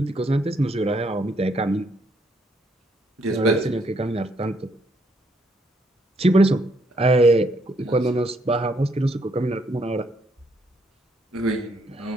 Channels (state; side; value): normal; both; correlation 0.72